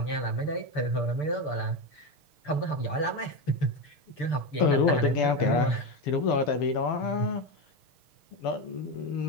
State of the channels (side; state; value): right; late; 6.7 ms